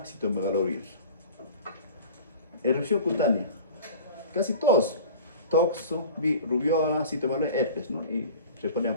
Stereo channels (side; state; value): both; inverted; correlation -0.40